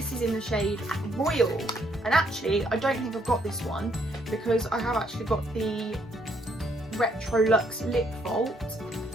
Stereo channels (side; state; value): both; normal; correlation 0.70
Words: is in the shade Royal. And actually I don't think I've got this one because I have actually got the Retrolux lip vault,